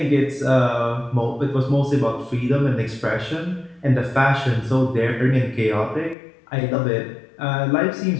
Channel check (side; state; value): right; drops out; at 6.2 s